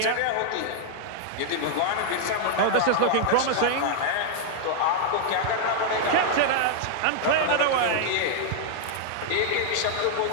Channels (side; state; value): both; different; correlation -0.01